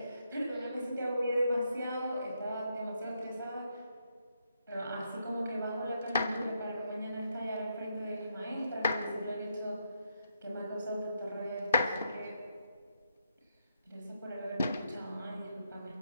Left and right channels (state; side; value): inverted; both; correlation -0.79